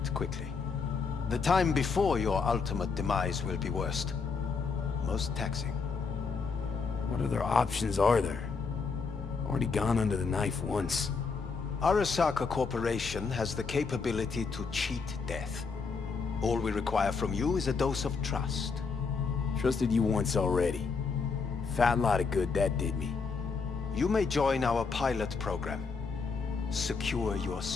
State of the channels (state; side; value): quieter; right; 4.9 dB